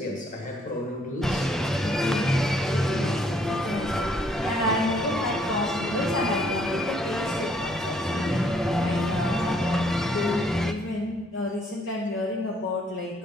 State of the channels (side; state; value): both; normal; correlation 0.66